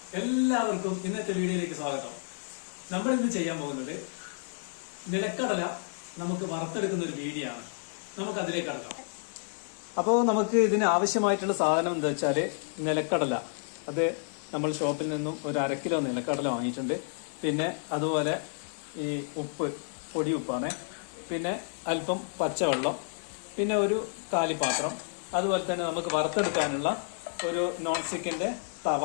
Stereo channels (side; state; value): right; silent; digital silence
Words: എല്ലാവർക്കും ഇന്നത്തെ വീഡിയോയിലേക്ക് സ്വാഗതം. നമ്മൾ ഇന്ന് ചെയ്യാൻ പോകുന്നത് നിലക്കടല നമുക്ക് വറുത്തെടുക്കുന്ന ഒരു വീഡിയോ ആണ്. നമുക്ക് അതിലേക്ക് കടക്കാം. അപ്പോൾ നമുക്ക് ഇതിന് ആവശ്യമായിട്ടുള്ള സാധനം എന്താ വെച്ചാല് നിലക്കടല. അത് നമ്മൾ ഷോപ്പിൽ നിന്നും ഒരു 1/2 കിലോ നിലക്കടല വാങ്ങിയിട്ടുണ്ട്. പിന്നെ അതുപോലെ ഈ ഉപ്പ്, പൊടി ഉപ്പാണ്. പിന്നെ അല്പം പച്ചവെള്ളം, പിന്നെ ഒരു കാലിപ്പാത്രം. അതുപോലെ തന്നെ നമുക്ക് വറുത്തെടുക്കാനുള്ള ഒരു നോൺ സ്റ്റിക്കിന്റെ തവ.